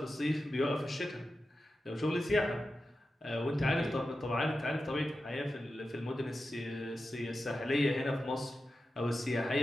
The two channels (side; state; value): both; normal; correlation 0.92